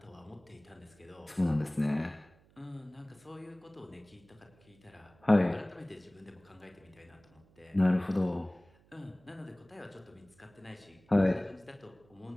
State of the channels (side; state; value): right; noise; hum, 29 dB below the sound